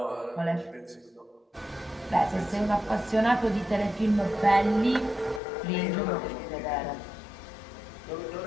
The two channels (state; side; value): drops out; right; at 5.4 s